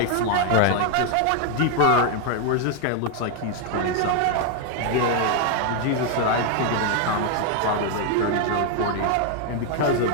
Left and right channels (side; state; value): both; different; correlation 0.01